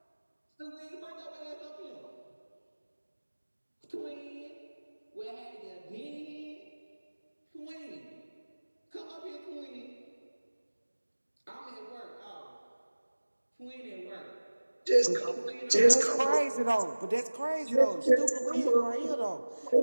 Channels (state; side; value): inverted; both; correlation -1.00